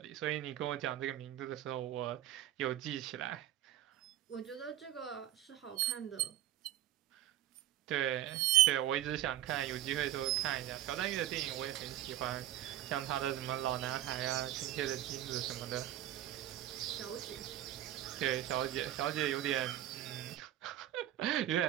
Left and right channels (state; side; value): quieter; left; 12.9 dB